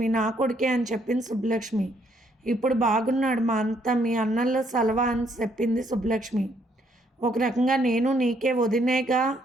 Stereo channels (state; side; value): normal; both; correlation 0.70